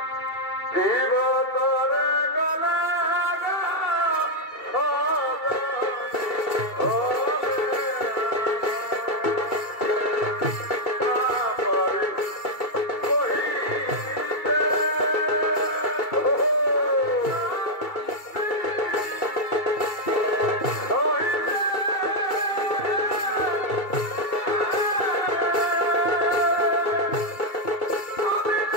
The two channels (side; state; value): right; late; 2.3 ms